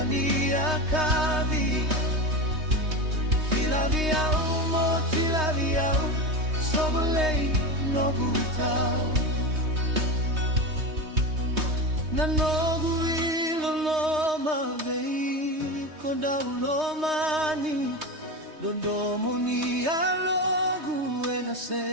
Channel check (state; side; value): late; left; 3.2 ms